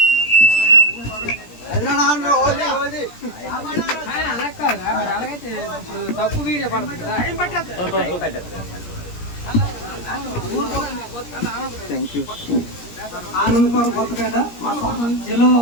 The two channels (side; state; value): right; late; 17 ms